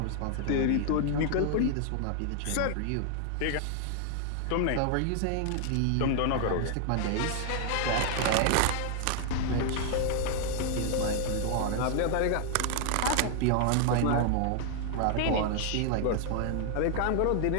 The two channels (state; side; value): different; both; correlation 0.00